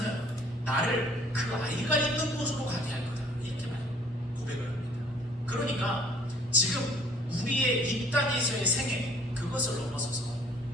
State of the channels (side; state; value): both; normal; correlation 0.56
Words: 나를 그 아이가 있는 곳으로 가게 할 거다, 이렇게 고백을 합니다. 그러니까 지금 우리의 이 땅에서의 생애, 그것을 넘어서서